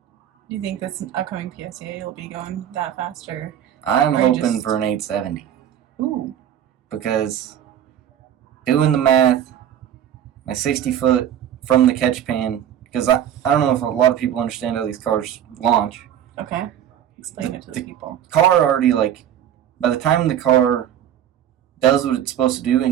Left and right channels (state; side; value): quieter; left; 10.2 dB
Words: Do you think this upcoming PSA you'll be going that faster? I'm Or hoping just- for an 870 Ooh. because doing the math, my 60 foot from the catch pan, because I don't know if a lot of people understand how these cars launch. Okay. Explain it to the people. Car already, by the time the car does what it's supposed to do